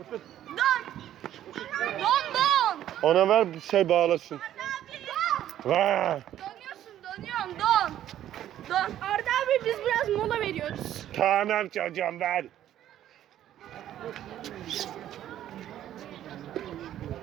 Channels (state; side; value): quieter; left; 11.8 dB